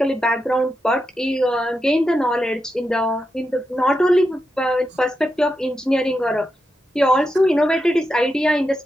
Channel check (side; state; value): both; normal; correlation 0.87